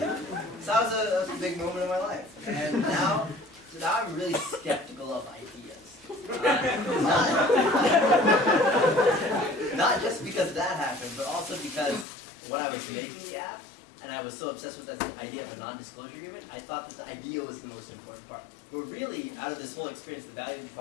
So that was a big moment in my life, and now I'm really skeptical of ideas. Not just because that happened, but also because when I was making the app, and I was so obsessed with this idea of a non-disclosure agreement, I thought that the idea was the most important part. But really, out of this whole experience, the valuable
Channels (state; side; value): drops out; right; at 12.1 s